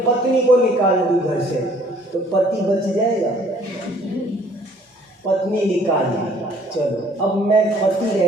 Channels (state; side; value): normal; both; correlation 0.58